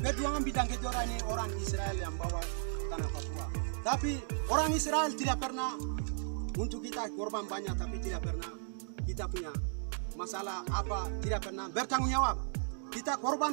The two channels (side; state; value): left; silent; digital silence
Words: bidang kejora ini orang Israel yang bawa tanah Papua. Tapi orang Israel tidak pernah, untuk kita korban banyak, tapi tidak pernah kita punya masalah apa, tidak pernah bertanggung jawab. Kita